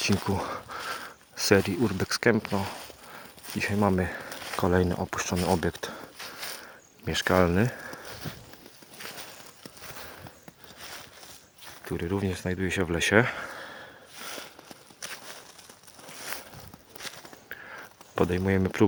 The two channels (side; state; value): both; identical; correlation 1.00